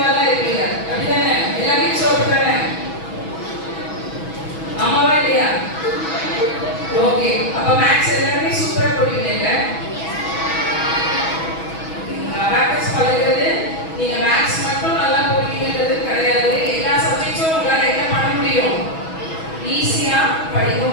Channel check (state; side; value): late; right; 6.2 ms